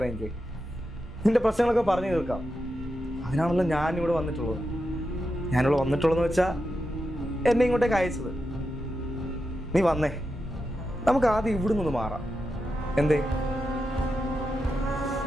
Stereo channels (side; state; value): both; normal; correlation 0.88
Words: നിന്റെ പ്രശ്നങ്ങളൊക്കെ പറഞ്ഞു തീർക്കാം. അതിനാണല്ലോ ഞാനിവിടെ വന്നിട്ടുള്ളത്. ഞാനിവിടെ വന്നിട്ടുള്ളതെന്ന് വെച്ചാൽ എന്നെ ഇങ്ങോട്ടേക്ക് അയച്ചത്. നീ വന്നേ, നമുക്ക് ആദ്യം ഇവിടെ നിന്ന് മാറാം. എന്തേ?